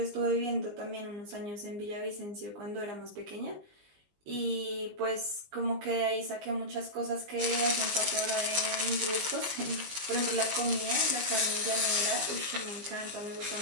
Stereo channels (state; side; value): late; left; 20 ms